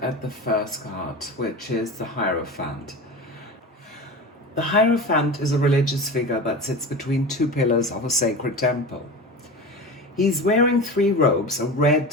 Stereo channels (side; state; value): both; normal; correlation 0.29